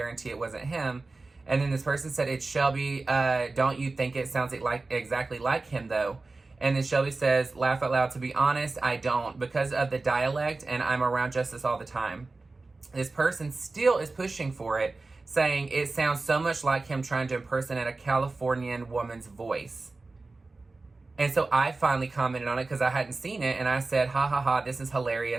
it wasn't him. And then this person said, it's Shelby. Don't you think it sounds like exactly like him, though? And then Shelby says, laugh out loud, to be honest, I don't, because of the dialect, and I'm around Justice all the time. This person still is pushing for it, saying it sounds so much like him trying to impersonate a Californian woman's voice. And so I finally commented on it because I hadn't seen it, and I said, ha ha ha, this is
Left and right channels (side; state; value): left; quieter; 3.5 dB